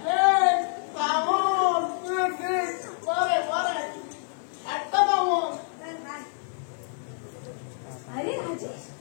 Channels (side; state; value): right; silent; digital silence